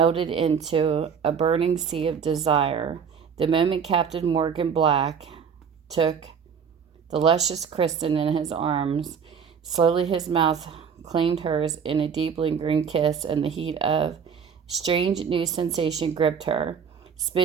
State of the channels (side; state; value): left; quieter; 6.8 dB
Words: into a burning sea of desire. The moment Captain Morgan Black took the luscious Kristen in his arms, slowly his mouth claimed hers in a deep lingering kiss, and the heat of strange new sensation gripped her,